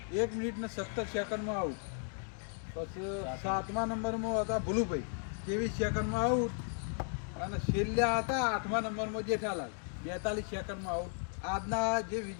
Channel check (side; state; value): right; silent; 54 dB below the other